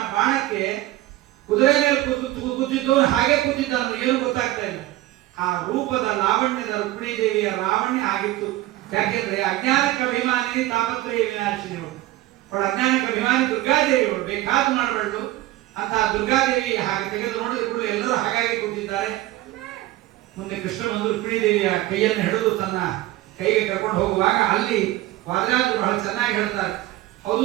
ಬಾಣಕ್ಕೆ ಕುದುರೆ ಮೇಲೆ ಕೂತಿದ್ದವನು ಹಾಗೆ ಕೂತಿದ್ದಾನು, ಏನು ಗೊತ್ತಾಗ್ತಾ ಇಲ್ಲ. ಆ ರೂಪದ ಲಾವಣ್ಯದ ರುಕ್ಮಿಣಿ ದೇವಿಯ ಲಾವಣ್ಯ ಆಗಿತ್ತು. ಯಾಕೆಂದ್ರೆ ಅಜ್ಞಾನಕ್ಕೆ ಅಭಿಮಾನಿ ತಾಪತ್ರಯ ವಿನಾಶಿನಿ ಅವಳು. ಅವಳ ಅಜ್ಞಾನಕ್ಕೆ ಅಭಿಮಾನಿ ದುರ್ಗಾದೇವಿ, ಅವಳು ಬೇಕಾದ್ದು ಮಾಡಬಾರ್ದು ಅಂತ ದುರ್ಗಾದೇವಿ ಹಾಗೆ ತೆಗೆದು ನೋಡಿದ ಕೂಡಲೇ ಎಲ್ಲರೂ ಹಾಗಾಗಿ ಕೂತಿದ್ದಾರೆ. ಮುಂದೆ ಕೃಷ್ಣ ಬಂದು ರುಕ್ಮಿಣಿ ದೇವಿಯ ಕೈಯನ್ನು ಹಿಡಿದು ತನ್ನ ಕೈಗೆ ಕರ್ಕೊಂಡು ಹೋಗುವಾಗ ಅಲ್ಲಿ ವಾದರಾಜರು ಬಹಳ ಚೆನ್ನಾಗಿ ಹೇಳ್ತಾರೆ, ಹೌದು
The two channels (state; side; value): quieter; left; 16.2 dB